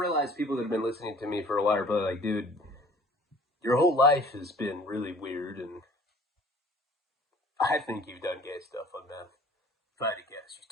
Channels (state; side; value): normal; both; correlation 0.51